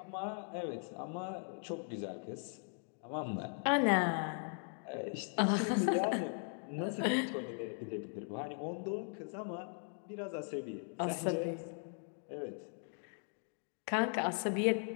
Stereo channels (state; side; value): silent; right; 52 dB below the other